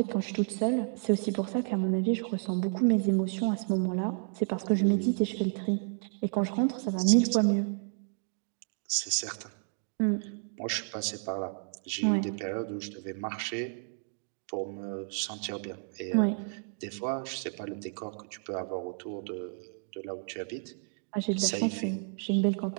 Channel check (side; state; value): left; silent; 57 dB below the other